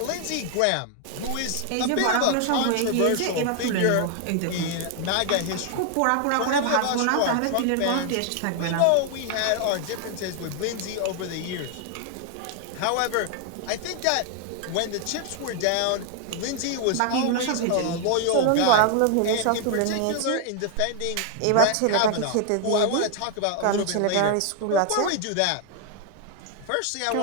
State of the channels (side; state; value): both; different; correlation 0.00